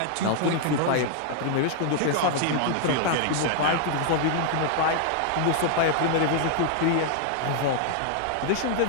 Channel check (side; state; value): both; different; correlation 0.00